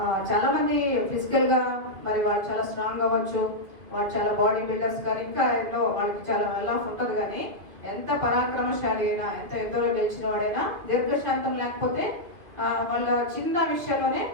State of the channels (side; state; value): left; late; 2.6 ms